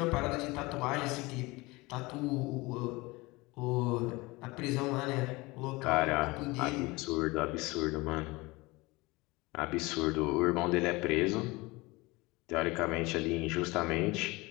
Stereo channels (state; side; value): quieter; right; 22.9 dB